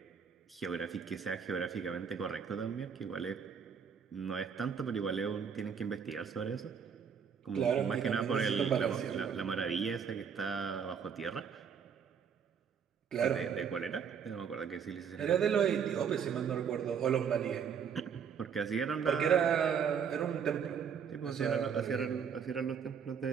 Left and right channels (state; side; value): quieter; left; 7.1 dB